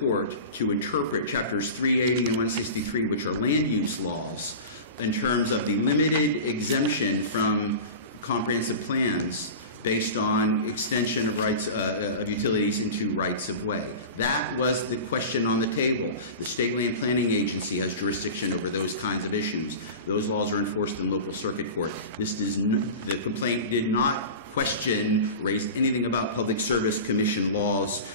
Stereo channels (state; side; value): inverted; both; correlation -0.31